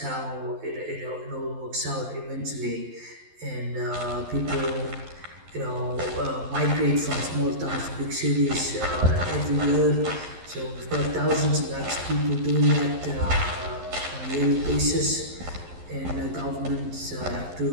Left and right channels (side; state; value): left; late; 11 ms